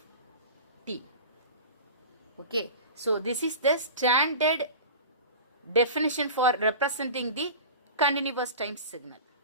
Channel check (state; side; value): inverted; both; correlation -0.34